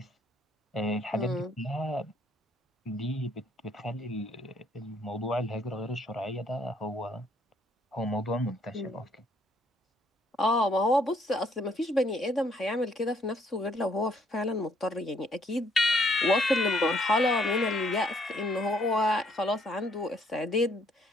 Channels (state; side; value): normal; both; correlation 0.66